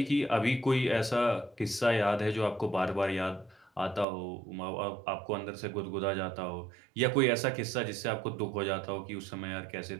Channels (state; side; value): drops out; left; at 4.0 s